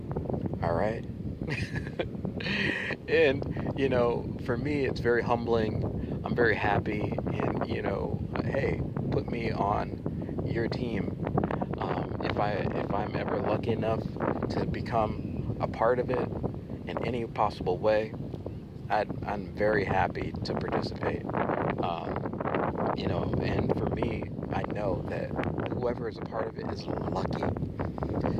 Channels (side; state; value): both; identical; correlation 1.00